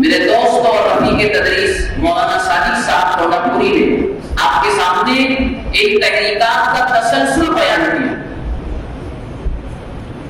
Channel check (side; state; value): both; identical; correlation 1.00